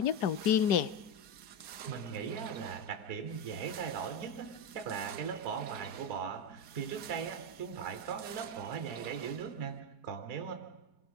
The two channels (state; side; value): late; right; 4.2 ms